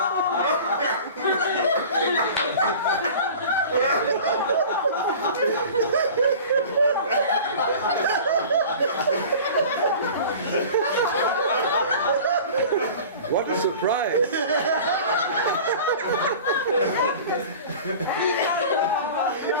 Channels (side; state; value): both; inverted; correlation -0.40